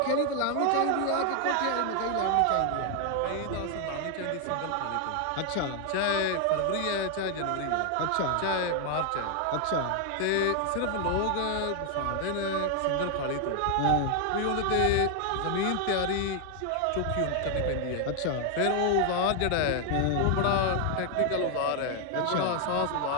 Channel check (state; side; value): different; both; correlation 0.00